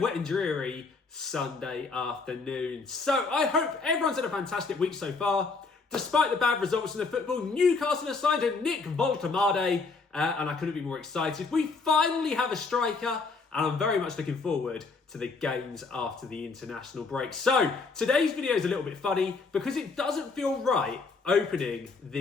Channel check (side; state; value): right; quieter; 4.3 dB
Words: and dreary Sunday afternoon. So I hope everyone's had a fantastic week so far. Despite the bad results in the football, Newcastle have signed a Nick Voltemade and I couldn't be more excited. We finally have a striker and I'm very much looking forward to the games after the international break. So today's video is a little bit funny because it doesn't feel right opening